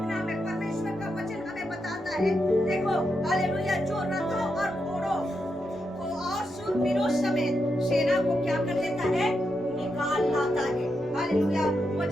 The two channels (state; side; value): normal; both; correlation 0.84